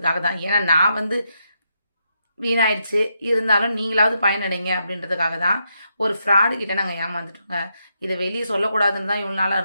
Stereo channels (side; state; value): both; inverted; correlation -0.81